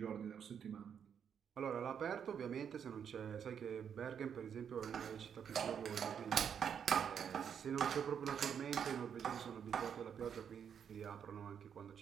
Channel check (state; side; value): quieter; left; 7.8 dB